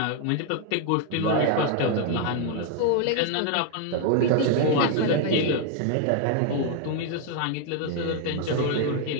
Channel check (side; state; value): both; different; correlation 0.00